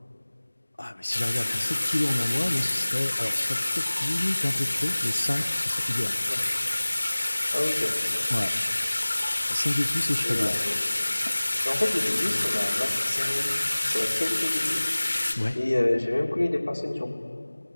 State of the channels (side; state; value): both; inverted; correlation -1.00